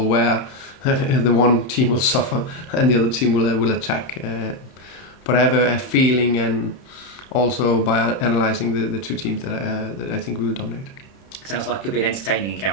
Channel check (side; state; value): right; late; 31 ms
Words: where the one team will suffer and the other team will attack. But I have a feeling, and also by analysing the two teams, that I think we will dominate. Sounds like it could be an entertaining